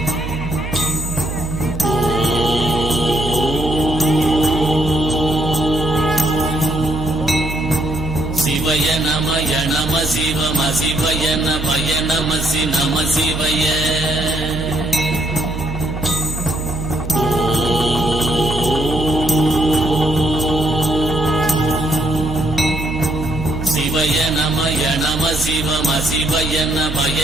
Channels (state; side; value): noise; right; hum, 7 dB below the sound